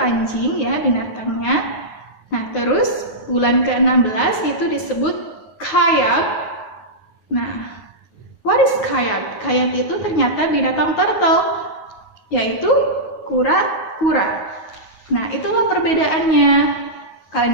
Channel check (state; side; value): late; right; 9.4 ms